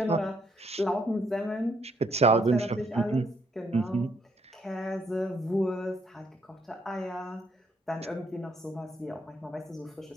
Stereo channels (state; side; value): normal; both; correlation 0.71